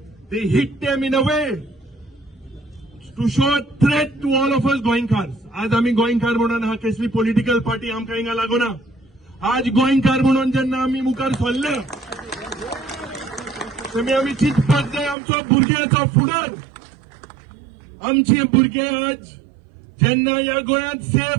they hit them in a way to show a threat to all of us गोंयकार. आज आम्ही गोंयकार म्हणून हा कसली पॉलिटिकल पार्टी आमकां हिंगा लागोना. आज गोंयकार म्हणून जेन्ना आमी मुखार सरले तेन्ना आमी चिंतपाक जाय आमचो भुरग्याचो फुडार. आमचे भुरगे आज जेन्ना ह्या गोंयांत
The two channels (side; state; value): left; drops out; at 15.2 s